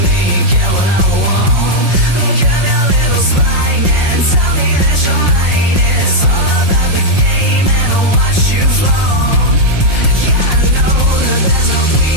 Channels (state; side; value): late; left; 5.6 ms